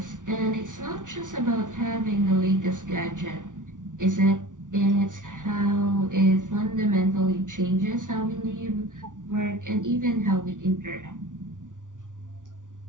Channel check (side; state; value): left; late; 0.87 ms